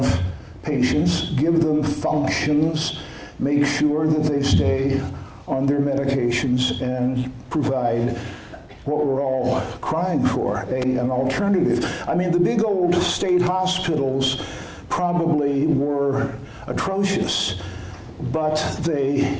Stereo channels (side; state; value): both; identical; correlation 1.00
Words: patients, give them functions, make sure that they stay on their medications, and provide what we're all crying for, an alternative. I mean, the big old state hospitals probably were atrocious, but